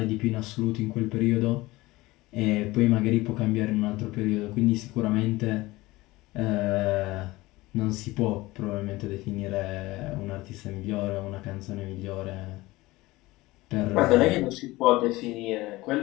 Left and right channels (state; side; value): quieter; right; 19.8 dB